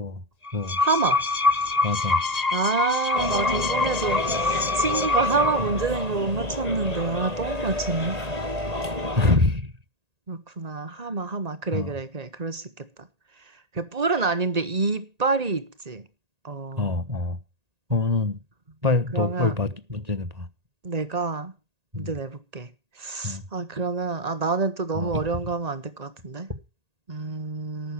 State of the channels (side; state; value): left; late; 1.8 ms